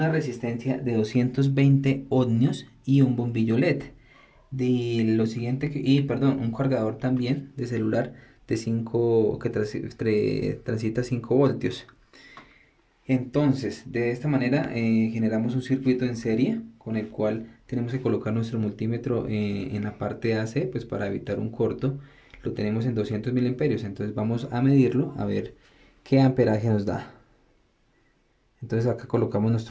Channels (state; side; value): identical; both; correlation 1.00